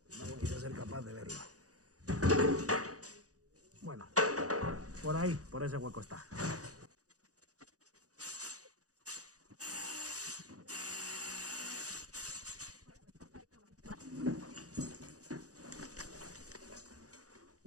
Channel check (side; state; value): left; late; 0.66 ms